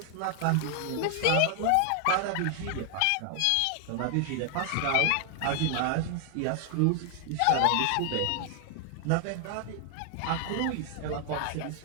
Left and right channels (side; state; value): both; different; correlation 0.00